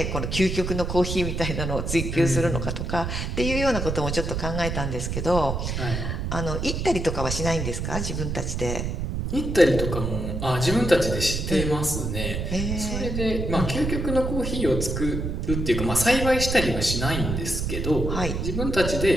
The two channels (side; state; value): right; noise; rumble, 2 dB below the sound